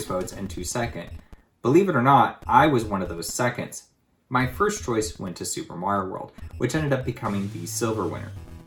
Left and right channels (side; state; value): both; identical; correlation 1.00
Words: votes and 2 second. Believe it or not, I was one of those seconds. My first choice went to Super Mario World, which ended up becoming the silver winner.